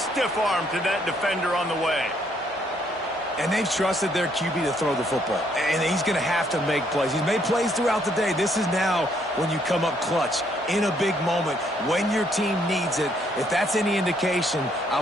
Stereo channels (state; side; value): normal; both; correlation 0.69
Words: arm to that defender on the way. And they've trusted their QB to throw the football. And he's going to have to make plays. He's made plays throughout the day. This is now when you come up clutch in a big moment when your team needs it. If that's any indication, I